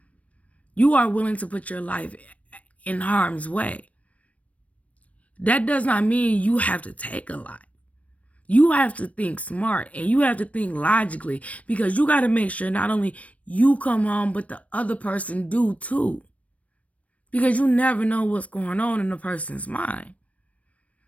You are willing to put your life in harm's way. That does not mean you have to take a life. You have to think smart and you have to think logically, because you got to make sure not only you come home, but the other person do too. Because you never know what's going on in the person's mind.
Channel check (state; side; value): late; right; 0.066 ms